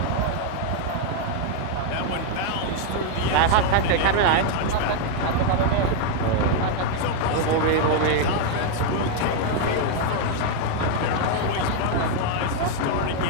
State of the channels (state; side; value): different; both; correlation 0.00